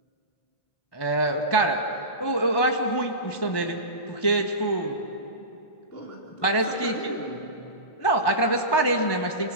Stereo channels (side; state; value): right; late; 1.2 ms